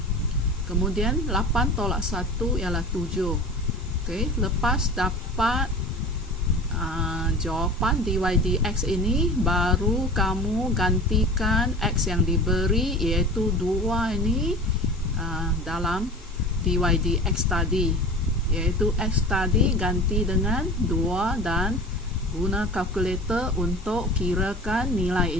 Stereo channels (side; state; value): both; normal; correlation 0.36